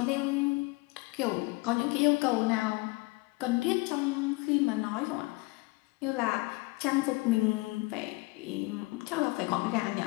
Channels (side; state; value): right; quieter; 24.4 dB